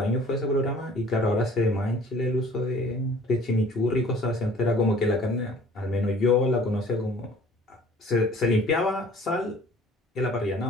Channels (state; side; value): normal; both; correlation 0.51